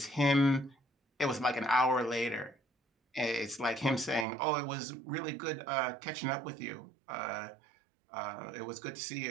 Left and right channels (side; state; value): left; drops out; at 4.2 s